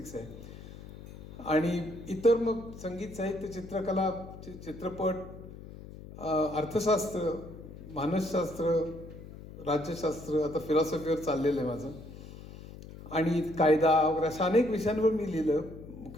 आहे. आणि इतर मग संगीत, साहित्य, चित्रकला, चित्रपट, अर्थशास्त्र, मानसशास्त्र, राज्यशास्त्र, आता फिलॉसॉफीवर चाललेलं आहे माझं. आणि कायदा वगैरे अशा अनेक विषयांवर मी लिहिलं.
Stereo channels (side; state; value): left; noise; hum, 15 dB below the sound